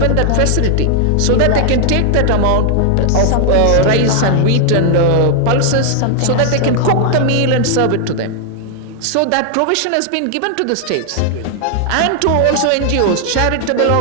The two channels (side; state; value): both; different; correlation 0.00